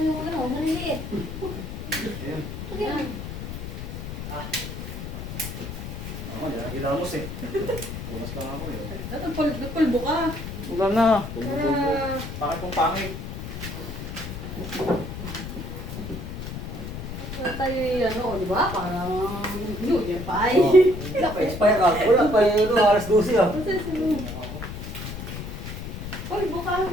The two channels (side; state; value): left; noise; rumble, 8 dB below the sound